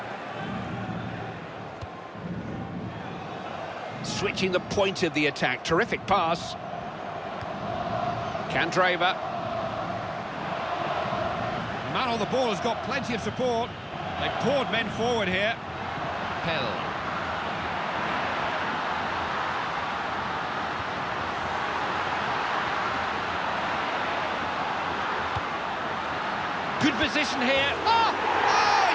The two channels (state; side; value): identical; both; correlation 1.00